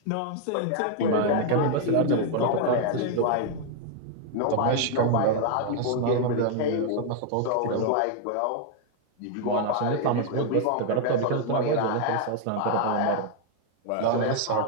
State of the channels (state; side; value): different; both; correlation 0.00